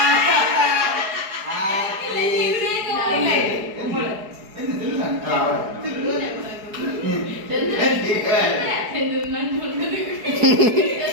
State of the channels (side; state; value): left; late; 4.8 ms